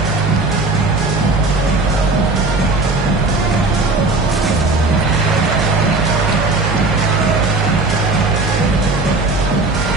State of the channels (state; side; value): quieter; left; 3.3 dB